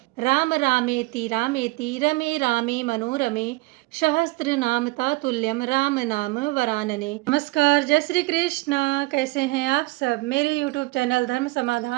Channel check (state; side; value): quieter; left; 22.6 dB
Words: राम रामेति रामेति रमे रामे मनोरमे सहस्त्रनाम तातुल्यम राम नाम वरानने। नमस्कार, जय श्री कृष्णा। कैसे हैं आप सब? मेरे YouTube चैनल धर्म